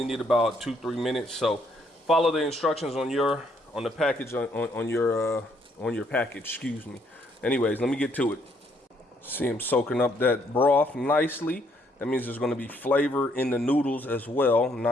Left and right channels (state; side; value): normal; both; correlation 0.69